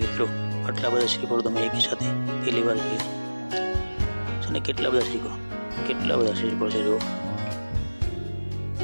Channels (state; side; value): inverted; both; correlation -1.00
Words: મિત્રો, આટલા બધા શ્રીફળ તમે એકી સાથે પહેલી વાર જોયું છે ને. કેટલા બધા શ્રીફળ છે જો.